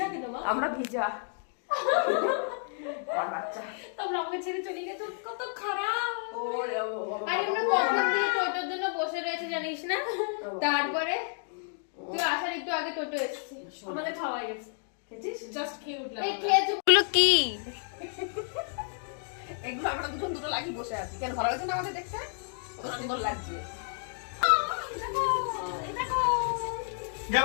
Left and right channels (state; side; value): silent; right; 57 dB below the other